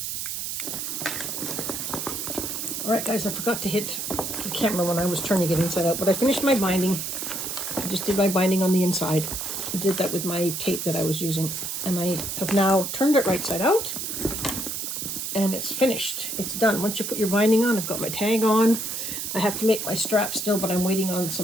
All right, guys, I forgot to hit the can't remember when I was turning it inside out, but I finished my binding. I just did my binding on the inside. I did that with my tape that I was using. And I have now turned it right side out. And it's finished. It's done. Once you put your binding on, I've got my tag on. I have to make my strap still, but I'm waiting on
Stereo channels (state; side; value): noise; right; hiss, 4 dB below the sound